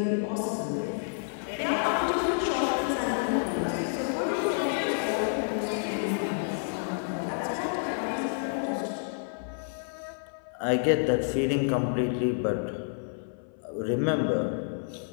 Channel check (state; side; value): silent; right; 58 dB below the other